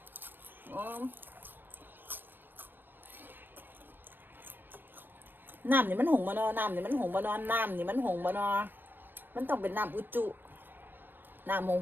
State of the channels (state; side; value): late; left; 0.094 ms